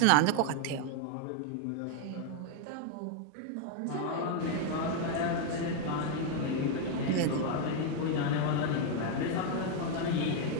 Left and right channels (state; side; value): different; both; correlation 0.00